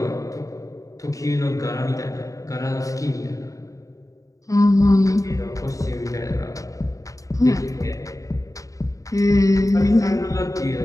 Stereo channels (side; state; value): right; late; 0.16 ms